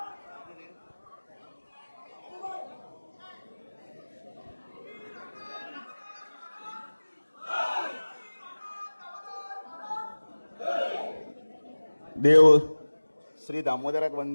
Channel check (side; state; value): both; inverted; correlation -1.00